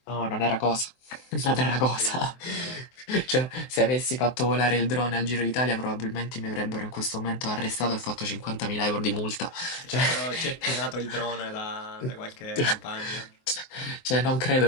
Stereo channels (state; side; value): late; right; 23 ms